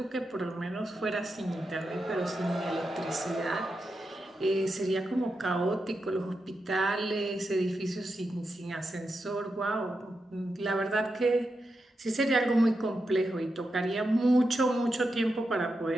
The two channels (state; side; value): normal; both; correlation 0.87